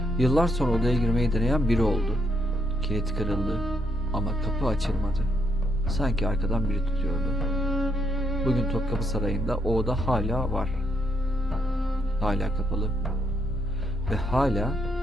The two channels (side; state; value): both; normal; correlation 0.76